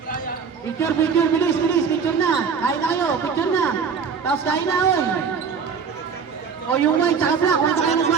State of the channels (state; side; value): quieter; left; 6.1 dB